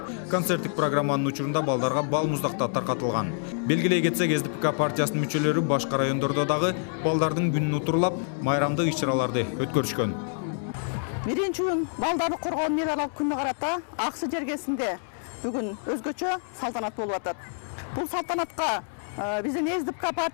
Концерттик программанын учурунда балдарга бал муздактар таркатылган. Белгилей кетсек, СДПК партиясынын мүчөлөрү башка райондордо дагы балдардын күнүн утурлап, майрамдык иш-чараларды өткөрүшкөн. Биринчи июн балдарды коргоо мейрамдык күнүнө карата Аксы жергесинде бүгүн өзгөчө салтанат болуп атат. Бул салтанатка биздин СДПК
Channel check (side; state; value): right; silent; 60 dB below the other